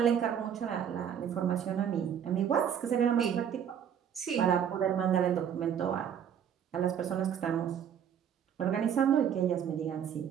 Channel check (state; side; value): quieter; left; 8.6 dB